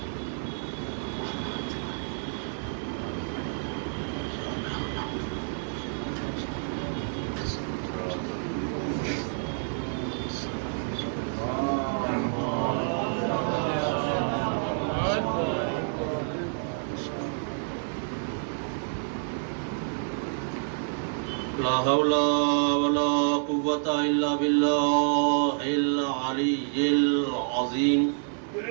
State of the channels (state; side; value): silent; left; digital silence